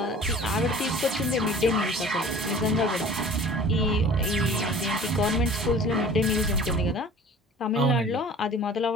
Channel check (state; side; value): normal; both; correlation 0.45